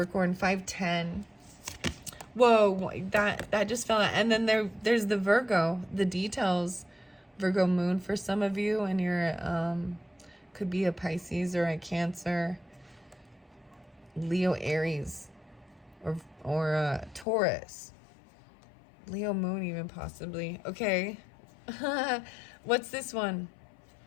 510. Whoa, that just fell out. And then there's the Virgo, the details. Virgo moon for some of you, and you're could be a Pisces or a Cancer, Leo, Aries, or a Taurus, Leo moon even possibly. Okay. What's this one?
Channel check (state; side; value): drops out; right; at 17.2 s